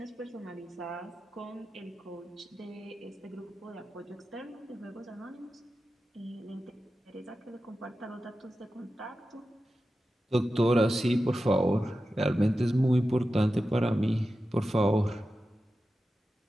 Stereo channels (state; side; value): normal; both; correlation 0.92